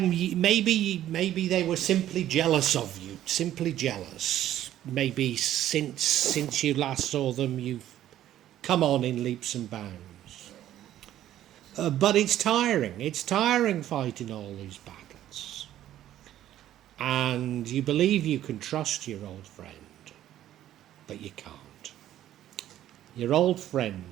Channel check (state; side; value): quieter; left; 12.4 dB